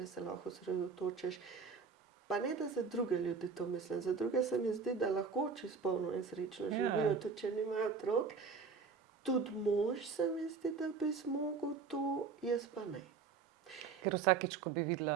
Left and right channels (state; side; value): quieter; left; 5.3 dB